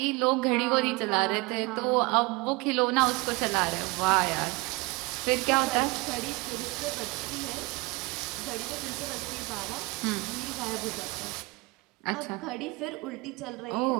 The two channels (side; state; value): left; quieter; 25.3 dB